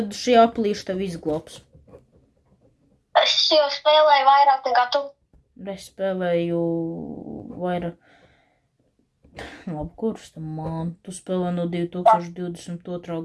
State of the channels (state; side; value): identical; both; correlation 1.00